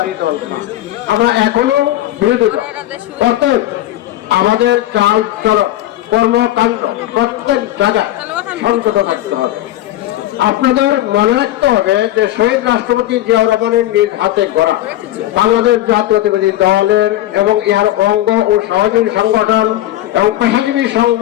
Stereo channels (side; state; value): right; quieter; 14.5 dB